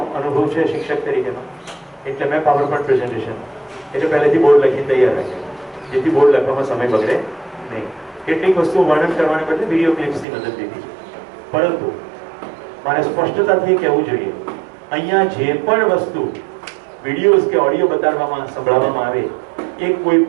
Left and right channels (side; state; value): left; drops out; at 10.2 s